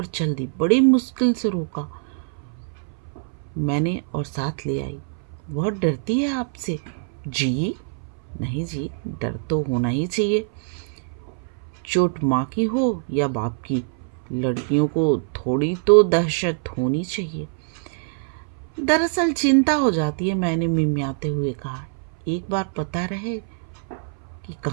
चल दी, बड़ी मुश्किल से रोका मैंने और साथ ले आई। बहुत डरती है आपसे? जी नहीं जी, डर तो होना ही चाहिए, चोट माँ की हो या बाप की। लड़कियों को थोड़ी तो दहशत होनी चाहिए। दरअसल चिंता हो जाती है, मैंने मिमियाते हुए कहा। एक बार पता रहे कि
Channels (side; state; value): left; silent; 58 dB below the other